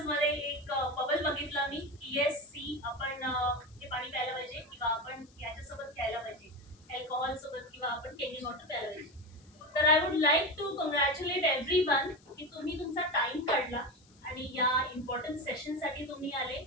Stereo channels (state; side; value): noise; left; hiss, 29 dB below the sound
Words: मध्ये एक बबल बघितला मी की येस सी आपण हे पाणी प्यायला पाहिजे किंवा आपण याच्यासोबत खेळायला पाहिजे, अल्कोहोल सोबत किंवा आपण केमिकल वॉटर प्यायला पाहिजे. तर I would like to congratulate everyone की तुम्ही तुमचा टाइम काढला आणि या इम्पॉर्टंट सेशन साठी तुम्ही आले.